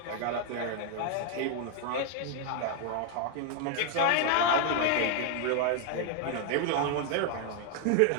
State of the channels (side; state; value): both; different; correlation 0.01